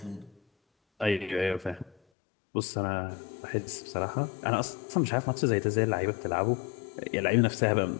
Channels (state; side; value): drops out; right; at 2.0 s